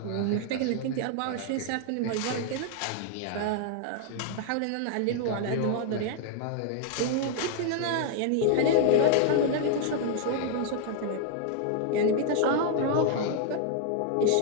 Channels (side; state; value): both; different; correlation 0.00